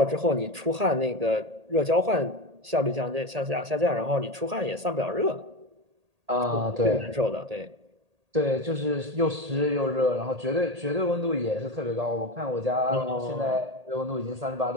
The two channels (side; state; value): left; late; 1.8 ms